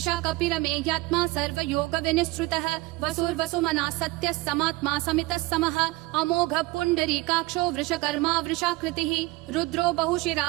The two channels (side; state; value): left; quieter; 21.7 dB